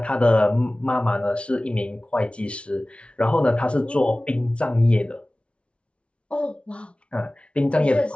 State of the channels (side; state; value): right; late; 0.060 ms